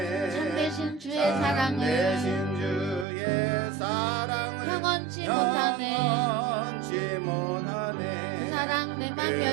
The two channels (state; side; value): drops out; left; at 3.1 s